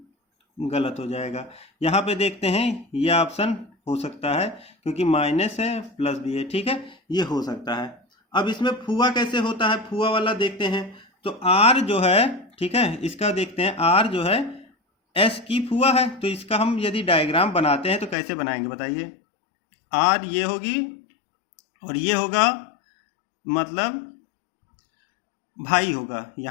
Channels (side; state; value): right; drops out; at 18.2 s